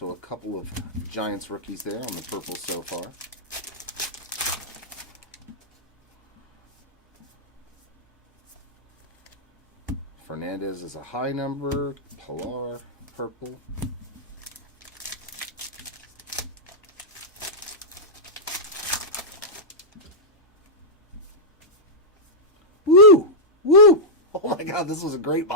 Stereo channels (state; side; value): normal; both; correlation -0.11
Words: a couple of Giants rookies there on the purple so far. Fernandez is a high number. Pilar, purple. Woo! Woo! Oh my God, this was a great